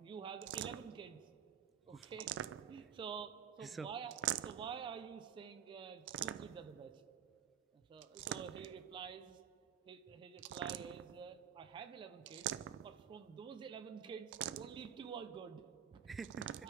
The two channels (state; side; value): quieter; left; 8.9 dB